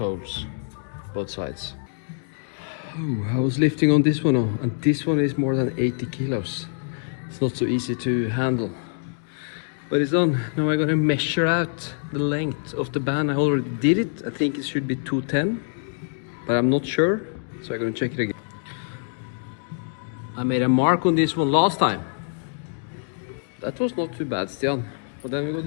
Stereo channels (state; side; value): silent; right; digital silence